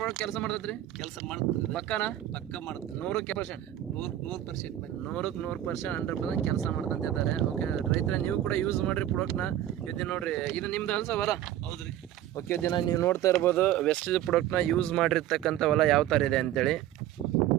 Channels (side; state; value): left; quieter; 12.6 dB